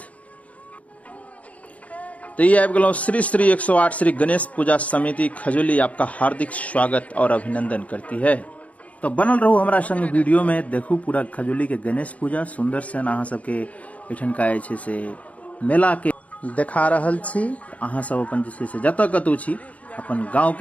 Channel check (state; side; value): late; right; 0.067 ms